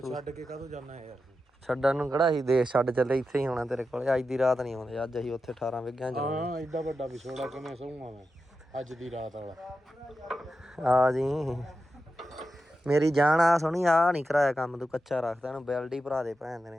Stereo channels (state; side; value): normal; both; correlation 0.90